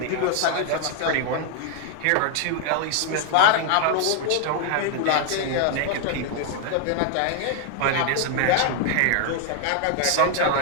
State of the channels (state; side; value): different; both; correlation 0.00